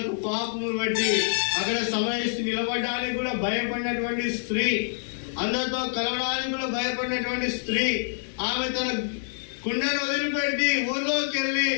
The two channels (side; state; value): right; silent; digital silence